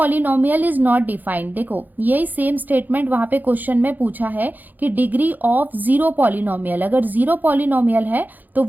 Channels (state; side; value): late; left; 0.085 ms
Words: is not defined. देखो यही सेम स्टेटमेंट वहां पे क्वेश्चन में पूछा है कि डिग्री ऑफ 0 पॉलिनोमियल, अगर 0 पॉलिनोमियल है तो